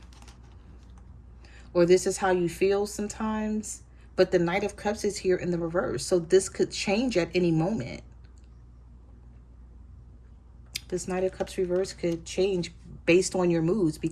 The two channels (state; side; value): identical; both; correlation 1.00